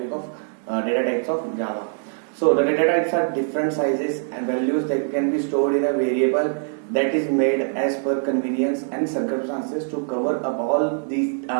of data types of Java. So the data types are different sizes and values that can be stored in a variable that is made as per convenience and circumstances to cover up all these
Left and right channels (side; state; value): left; silent; 63 dB below the other